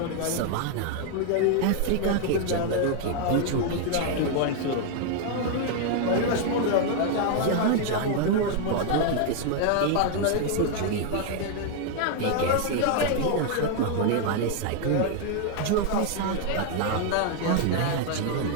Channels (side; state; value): both; different; correlation 0.00